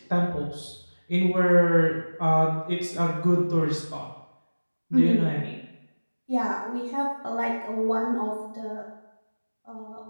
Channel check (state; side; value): inverted; both; correlation -1.00